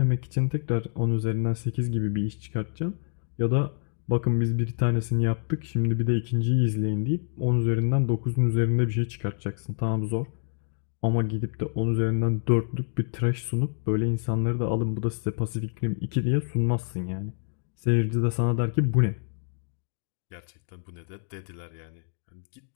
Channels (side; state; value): right; silent; digital silence